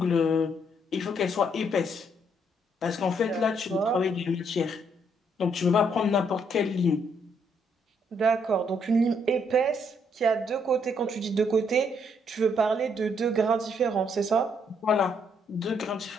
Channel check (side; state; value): both; normal; correlation 0.71